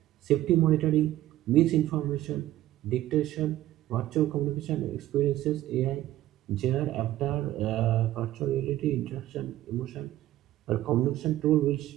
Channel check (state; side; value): quieter; left; 14.5 dB